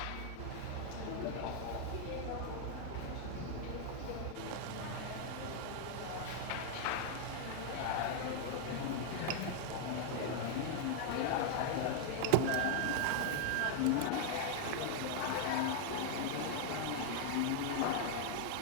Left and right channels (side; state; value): both; different; correlation 0.00